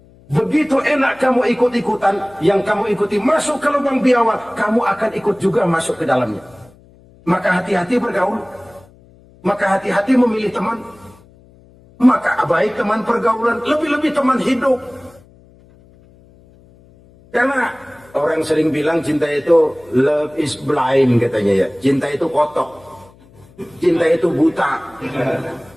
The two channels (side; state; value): left; noise; hum, 27 dB below the sound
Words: Begitu enak kamu ikut-ikutan, yang kamu ikuti masuk ke lubang biawak, kamu akan ikut juga masuk ke dalamnya. Maka hati-hati bergaul. Maka hati-hati memilih teman. Maka baik teman pergaulan, lebih-lebih teman hidup. Karena orang sering bilang cinta itu love is blind katanya ya. Cinta itu kotok. Cinta itu buta.